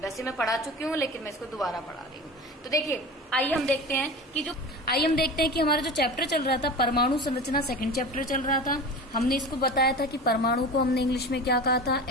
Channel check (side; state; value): both; normal; correlation 0.32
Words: मैं पढ़ा चुकी हूँ, लेकिन मैं इसको दोबारा पढ़ा रही हूँ। तो देखिए, आइए हम देखते हैं कि हमारा जो चैप्टर चल रहा था परमाणु संरचना, सेकंड चैप्टर चल रहा था। हमने इसको बताया था कि परमाणु को हमने इंग्लिश में क्या कहा था?